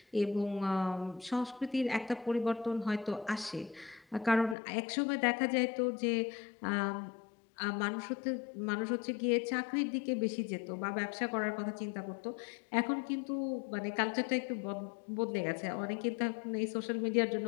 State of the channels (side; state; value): right; drops out; at 4.5 s